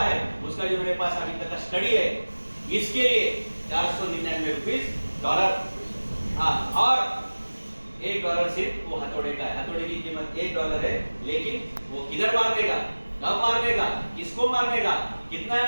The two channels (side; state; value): both; inverted; correlation -1.00